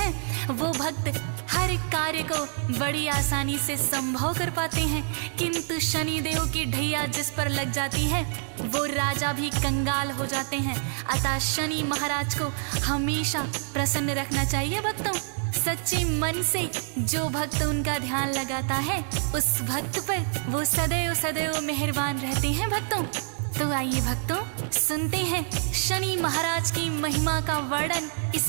वो भक्त हर कार्य को बड़ी आसानी से संभव कर पाते हैं। किंतु शनिदेव की ढैया जिस पर लग जाती है वो राजा भी कंगाल हो जाते हैं। अतः शनि महाराज को हमेशा प्रसन्न रखना चाहिए। भक्तों, सच्चे मन से जो भक्त उनका ध्यान लगाता है उस भक्त पर वो सदैव सदैव मेहरबान रहते हैं। भक्तों, तो आइए भक्तों सुनते हैं शनि महाराज की महिमा का वर्णन इस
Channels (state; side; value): silent; left; 60 dB below the other